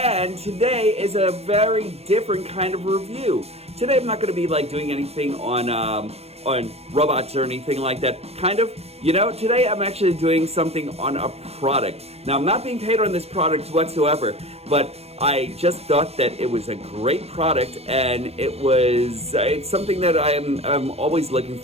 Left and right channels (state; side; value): late; left; 0.30 ms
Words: today is a very different kind of review. Today I'm not going to be like doing anything on robots or anything like that. Kind of, you know, today I'm actually doing something on a product. Now I'm not being paid on this product whatsoever, but I just thought that it was a great product, and it's something that I'm always looking